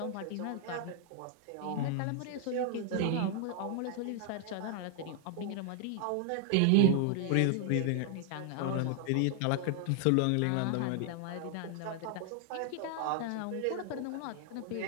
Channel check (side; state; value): both; different; correlation 0.00